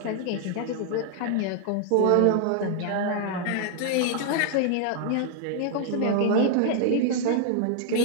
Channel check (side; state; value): both; different; correlation 0.00